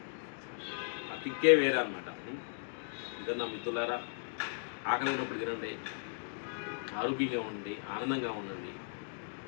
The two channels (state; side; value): silent; right; digital silence